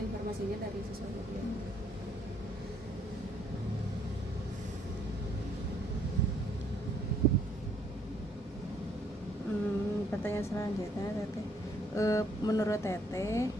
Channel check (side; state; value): both; normal; correlation 0.66